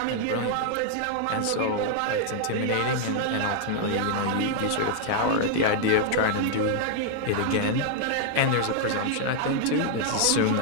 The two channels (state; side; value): different; both; correlation 0.00